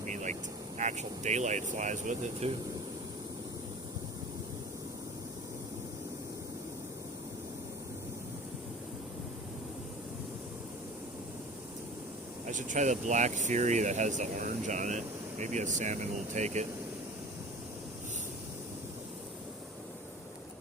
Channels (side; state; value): both; normal; correlation 0.40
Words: like, actual daylight flies with it, too. I should try the Black Fury that has the orange on it. Maybe a salmon will take it.